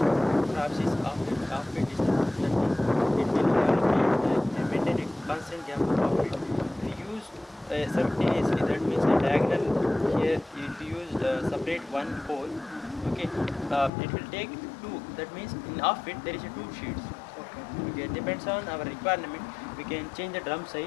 perhaps is offbeat distance. That means it will maintain a constant gap of offbeat. If you use simultaneously, that means a diagonal here. If you use separate one pole, okay, it will take 2. That means in offbeat there is a 2 sheets. Okay, depends on our requirement. we can change the drum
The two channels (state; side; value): drops out; right; at 13.9 s